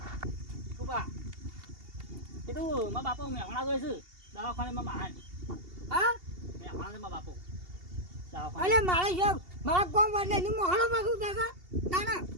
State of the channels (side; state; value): left; late; 2.8 ms